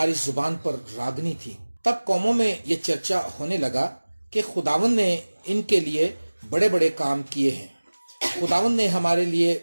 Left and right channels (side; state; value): both; inverted; correlation -1.00